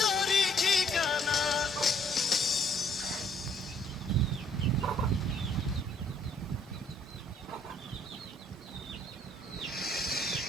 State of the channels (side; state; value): both; normal; correlation 0.62